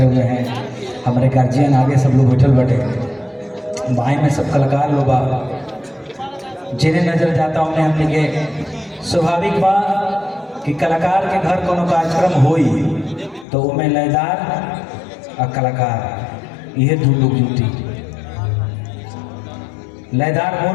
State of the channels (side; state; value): right; drops out; at 13.5 s